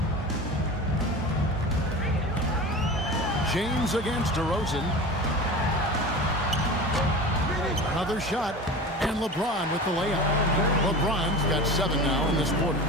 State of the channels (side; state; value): both; normal; correlation 0.33